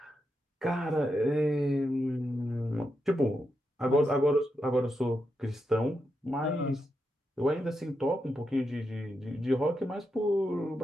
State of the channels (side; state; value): both; normal; correlation 0.85